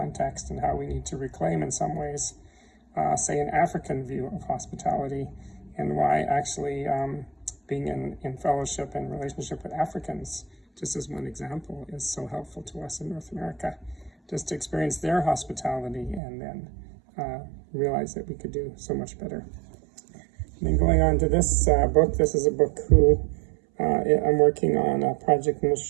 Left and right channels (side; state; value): left; drops out; at 16.2 s